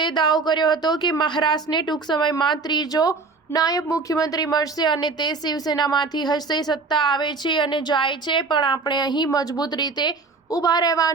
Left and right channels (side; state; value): left; quieter; 4.1 dB